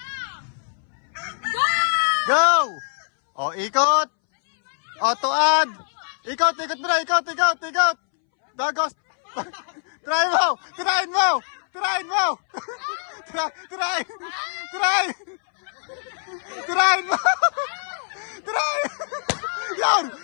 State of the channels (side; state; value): right; silent; 63 dB below the other